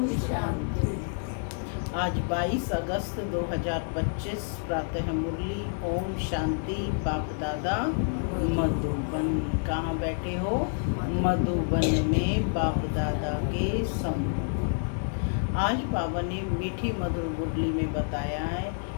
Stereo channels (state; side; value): silent; right; digital silence